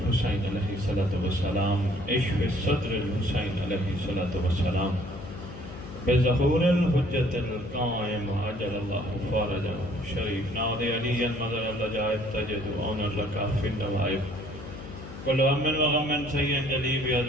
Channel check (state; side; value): noise; left; hum, 13 dB below the sound